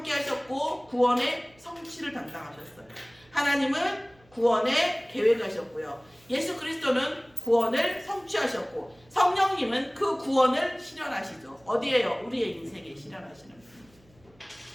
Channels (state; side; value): noise; right; hum, 30 dB below the sound